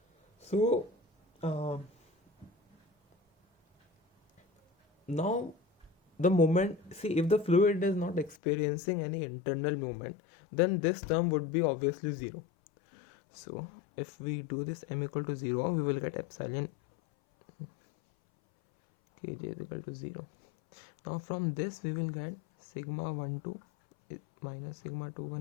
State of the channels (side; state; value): right; drops out; at 8.3 s